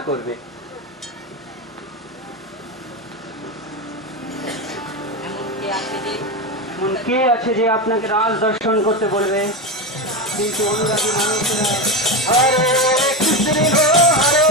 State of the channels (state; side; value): normal; both; correlation 0.16